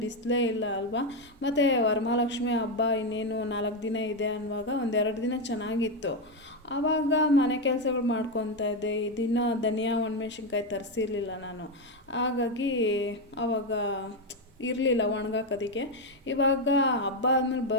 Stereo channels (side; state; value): both; normal; correlation 0.07